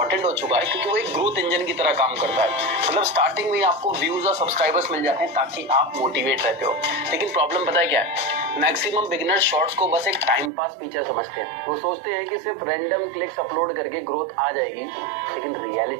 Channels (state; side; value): drops out; left; at 10.5 s